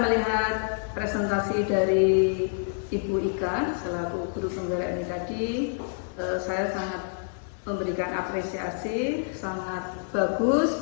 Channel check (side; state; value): right; silent; digital silence